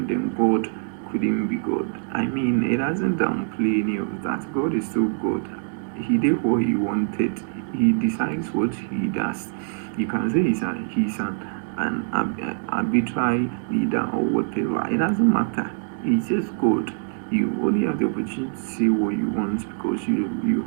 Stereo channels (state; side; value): silent; left; digital silence